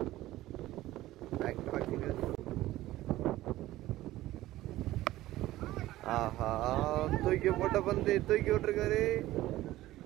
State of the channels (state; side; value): quieter; left; 16.0 dB